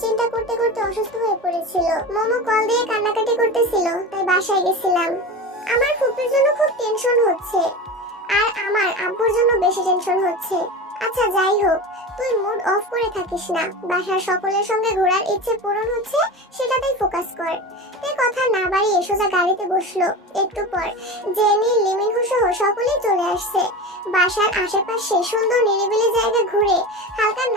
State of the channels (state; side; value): normal; both; correlation 0.28